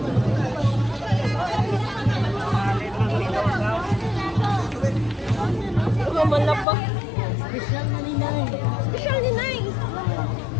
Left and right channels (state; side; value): drops out; right; at 6.7 s